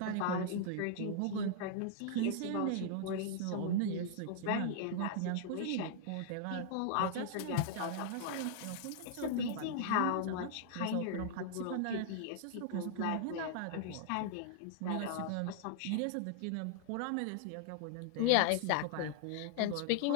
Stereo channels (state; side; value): different; both; correlation -0.01